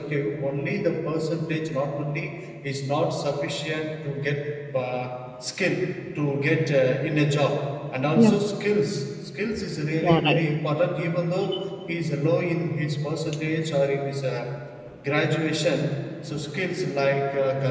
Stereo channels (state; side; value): identical; both; correlation 1.00